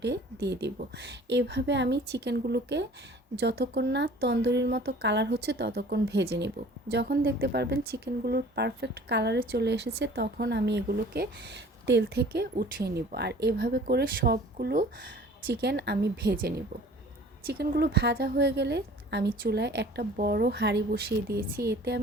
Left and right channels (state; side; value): normal; both; correlation 0.48